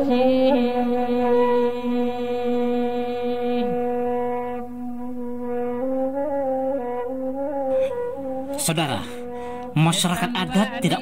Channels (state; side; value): identical; both; correlation 1.00